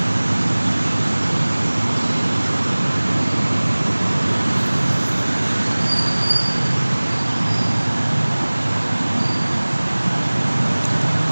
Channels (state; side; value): inverted; both; correlation -1.00